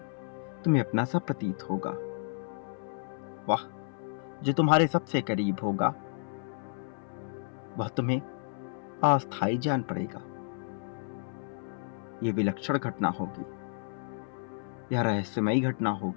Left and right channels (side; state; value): right; silent; 57 dB below the other